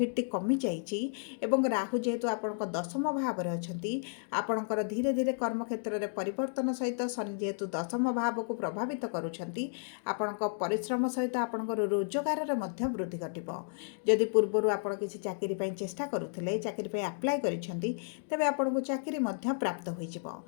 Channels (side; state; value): right; silent; digital silence